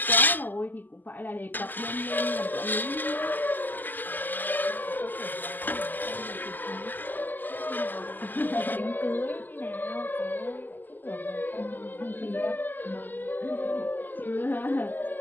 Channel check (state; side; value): late; right; 0.087 ms